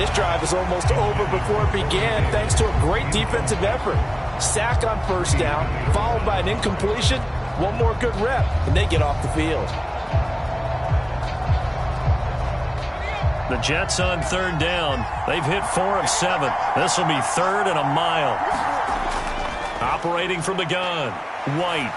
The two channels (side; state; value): both; identical; correlation 1.00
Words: drive is almost over before it began thanks to a great defensive effort. Sack on first down, followed by an incompletion. One more good rep, and they get off the field. The Jets on third down. They've hit 4 of 7. This will be third and a mile. Operating from the gun. White.